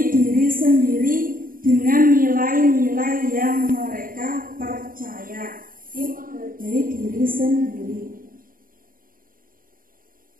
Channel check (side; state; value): left; late; 0.41 ms